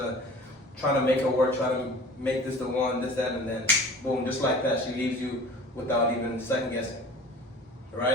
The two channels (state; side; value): normal; both; correlation 0.43